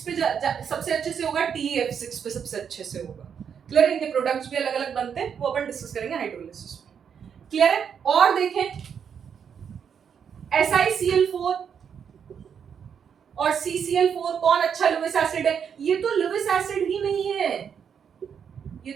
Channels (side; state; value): left; quieter; 7.4 dB